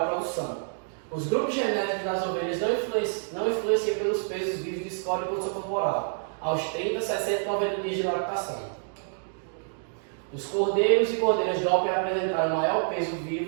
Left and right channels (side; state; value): left; silent; digital silence